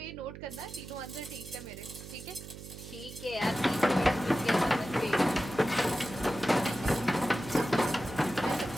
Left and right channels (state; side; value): noise; right; hum, 13 dB below the sound